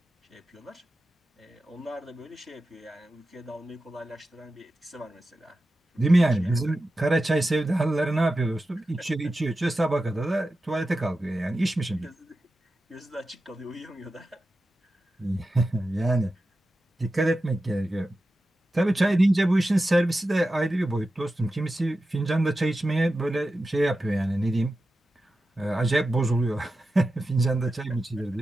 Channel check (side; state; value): both; normal; correlation 0.92